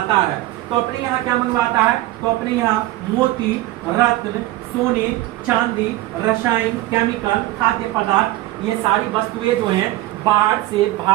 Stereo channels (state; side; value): quieter; left; 16.6 dB